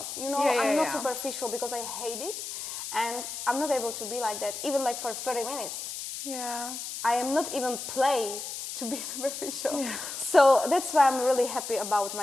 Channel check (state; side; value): noise; left; hiss, 7 dB below the sound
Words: You know, Yeah, I'm not yeah. superficial because I hate it, and I'm not able to be like that, even like for 30 minutes. Yeah. I am not even play to be superficial. Yeah. So that's why I'm really happy about